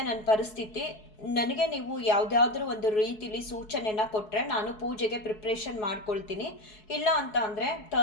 ನನ್ನ ಪರಿಸ್ಥಿತಿ, ನನಗೆ ನೀವು ಯಾವುದಾದ್ರೂ ಒಂದು ರೀತಿಲಿ ಸೂಚನೆನ ಕೊಟ್ಟರೆ ನಾನು ಪೂಜೆಗೆ ಪ್ರಿಪ್ರೇಷನ್ ಮಾಡ್ಕೊಳ್ತೀನಿ. ಇಲ್ಲ ಅಂತ ಅಂದರೆ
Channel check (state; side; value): late; right; 4.7 ms